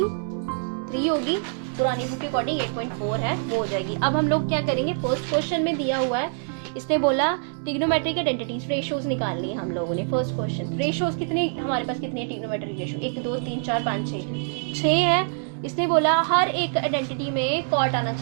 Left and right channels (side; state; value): left; silent; 62 dB below the other